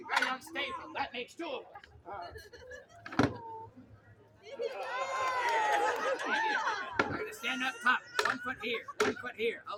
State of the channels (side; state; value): both; identical; correlation 1.00